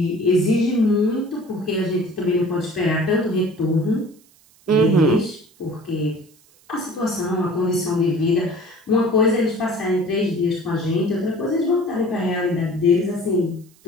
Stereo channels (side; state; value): right; noise; hiss, 30 dB below the sound